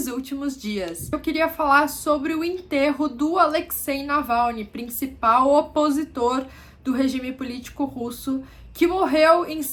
últimos dias. Eu queria falar sobre o enterro do Alexei Navalny, principal opositor do regime político russo, que morreu em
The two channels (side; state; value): both; identical; correlation 1.00